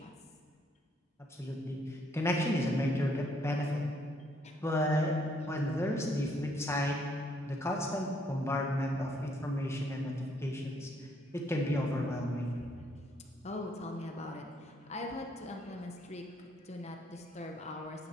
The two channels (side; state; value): both; normal; correlation 0.69